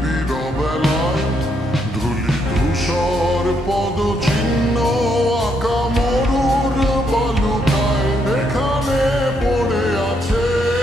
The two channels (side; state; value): both; normal; correlation 0.76